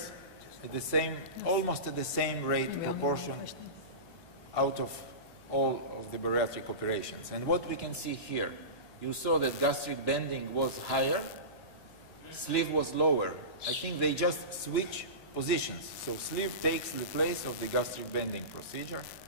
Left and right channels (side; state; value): right; late; 1.2 ms